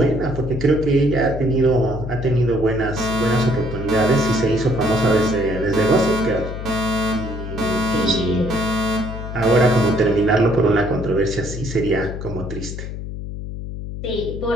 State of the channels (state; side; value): noise; left; hum, 8 dB below the sound